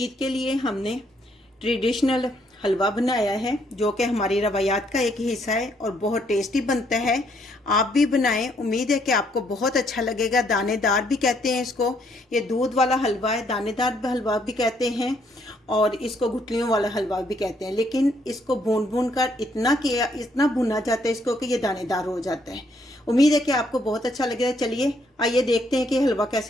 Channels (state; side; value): normal; both; correlation 0.70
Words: के लिए हमने ट्रेडिशनल हलवा बनाया है जो कि हमारी रवायात का एक हिस्सा है और बहुत टेस्टी बनता है। आप भी बनाएं, उम्मीद है कि आपको बहुत अच्छा लगेगा। दानेदार भी कहते हैं इसको, ये दूध वाला हलवा है, दानेदार हलवा भी कहते हैं और इसको गुठलियों वाला हलवा भी कहते हैं। लेकिन इसको भून भून कर इतना भुना जाता है इसको कि ये दानेदार हो जाता है। उम्मीद है कि आपको बहुत अच्छा लगेगा। चलिए आइए देखते हैं कि हलवा